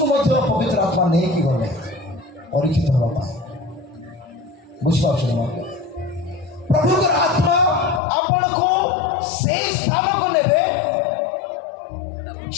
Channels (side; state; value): right; drops out; at 8.0 s